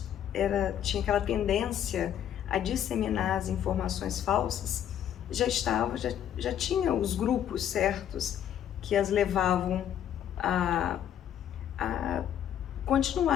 tinha aquela tendência a disseminar as informações falsas, já tinha os grupos certos que as levavam a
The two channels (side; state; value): right; quieter; 10.1 dB